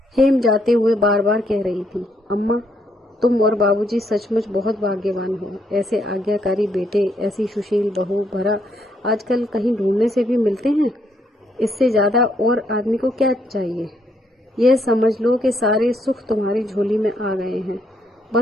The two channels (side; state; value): both; normal; correlation 0.73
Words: हेम जाते हुए बार बार कह रही थी, अम्मा तुम और बाबूजी सचमुच बहुत भाग्यवान हो। ऐसे आज्ञाकारी बेटे, ऐसी सुशील बहू भरा आजकल कहीं ढूंढने से भी मिलते हैं। इससे ज्यादा और आदमी को क्या चाहिए? यह समझ लो कि सारे सुख तुम्हारी झोली में आ गए हैं।